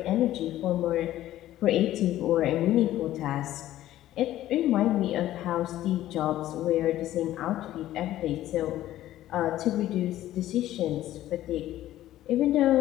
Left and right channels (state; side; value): quieter; right; 13.9 dB